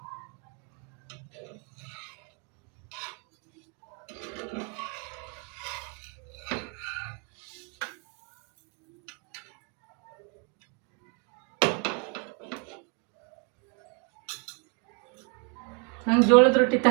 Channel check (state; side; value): quieter; left; 36.5 dB